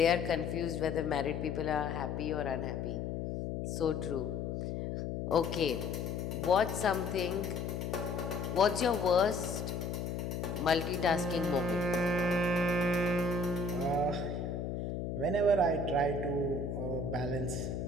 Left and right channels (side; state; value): left; noise; hum, 3 dB below the sound